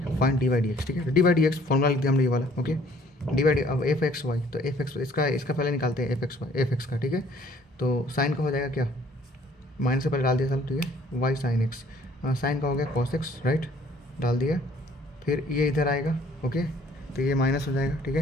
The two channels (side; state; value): both; normal; correlation 0.58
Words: d y d x, ठीक है। D y d x formula लिख दिया हमने ये वाला, ओके। डी वाई डी, अब एफ एक्स वाई, तो एफ एक्स इसका पहले निकालते हैं, एफ एक्स का, ठीक है। तो साइन का हो जाएगा क्या, माइनस से पहले डाल दिया सब, ठीक है। वाई साइन एक्स, साइन का हो गया कॉस एक्स, राइट, डाल दिया। फिर ये इधर आएगा, ओके, तो ये माइनस हो जाएगा, ठीक